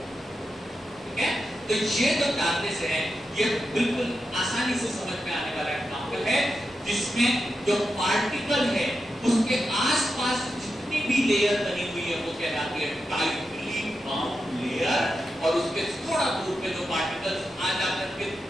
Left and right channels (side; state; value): both; normal; correlation 0.89